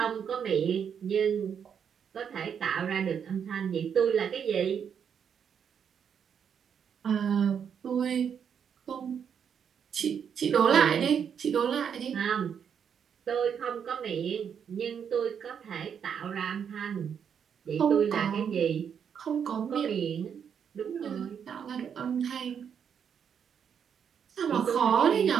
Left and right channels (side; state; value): left; quieter; 7.6 dB